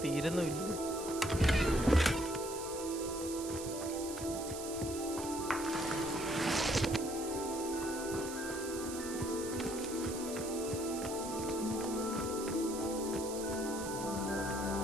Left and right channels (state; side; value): noise; right; hiss, 9 dB below the sound